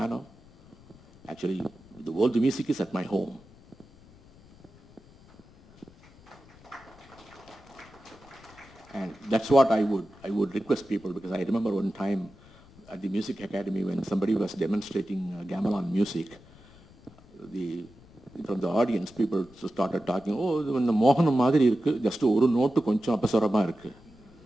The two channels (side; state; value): left; noise; rumble, 25 dB below the sound